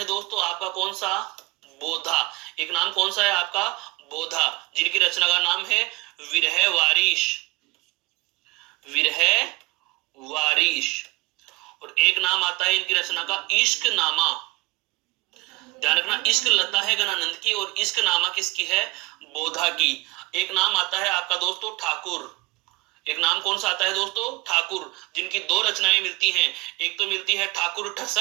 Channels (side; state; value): left; quieter; 22.3 dB